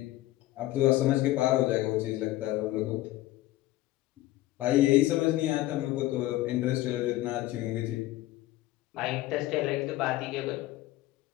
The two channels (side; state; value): right; quieter; 16.4 dB